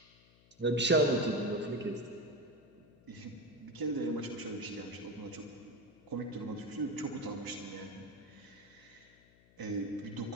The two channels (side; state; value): left; noise; hum, 27 dB below the sound